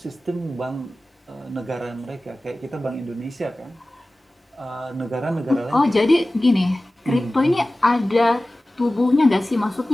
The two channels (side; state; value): both; normal; correlation 0.97